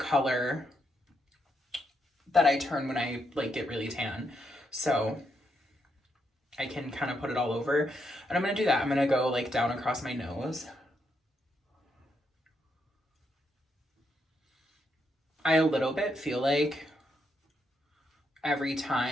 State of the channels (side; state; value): both; normal; correlation 0.79